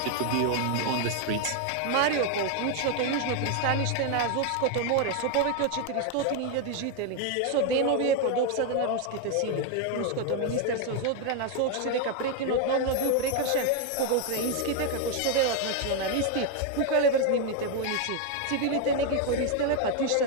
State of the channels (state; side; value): different; both; correlation 0.01